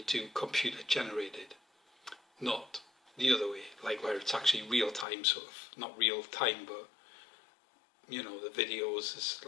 do computer generated, not the other way, like where it's actually real time, sort of, not real time, but you know, the videos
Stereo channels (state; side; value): drops out; right; at 5.1 s